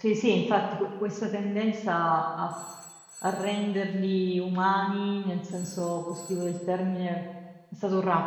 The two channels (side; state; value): both; identical; correlation 1.00